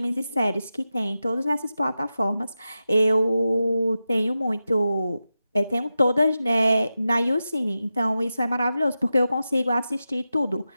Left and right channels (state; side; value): inverted; both; correlation -0.92